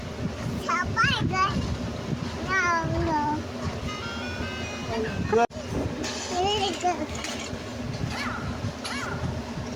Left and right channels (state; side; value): identical; both; correlation 1.00